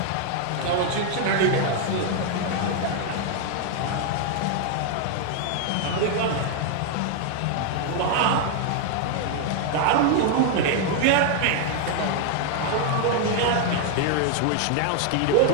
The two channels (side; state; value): both; different; correlation 0.00